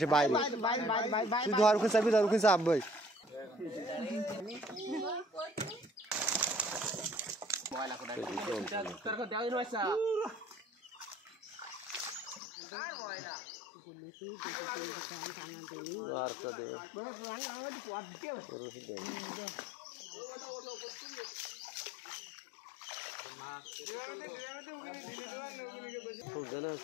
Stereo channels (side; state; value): right; drops out; at 12.4 s